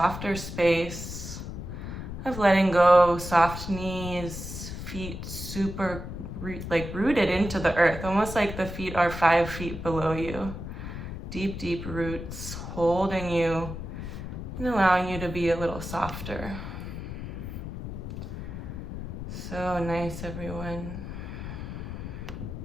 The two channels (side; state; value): left; noise; rumble, 8 dB below the sound